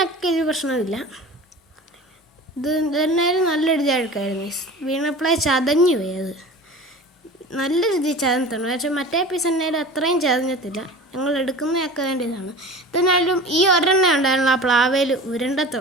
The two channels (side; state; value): both; normal; correlation 0.37